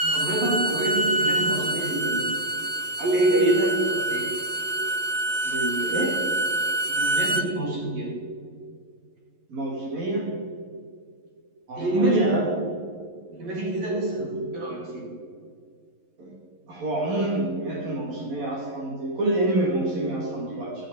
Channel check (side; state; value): left; late; 11 ms